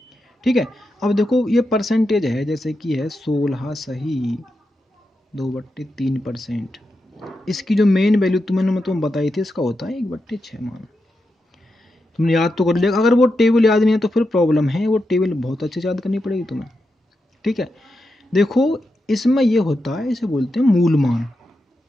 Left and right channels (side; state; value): both; normal; correlation 0.87